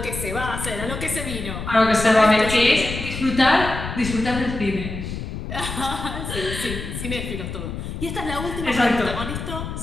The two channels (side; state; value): left; noise; rumble, 7 dB below the sound